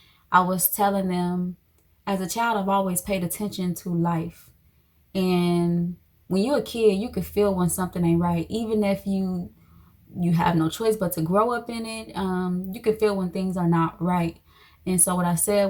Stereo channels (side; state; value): both; identical; correlation 1.00